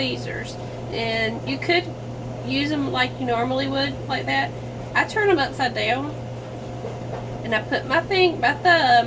And you could use them like you normally would, like that. I turn them upside down. And I put my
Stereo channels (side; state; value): both; identical; correlation 1.00